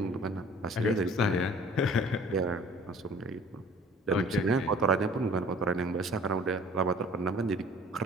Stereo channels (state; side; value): normal; both; correlation 0.50